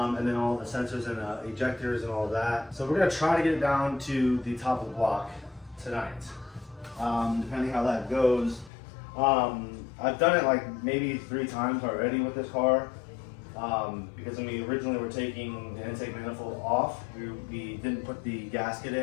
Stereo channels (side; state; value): right; drops out; at 8.7 s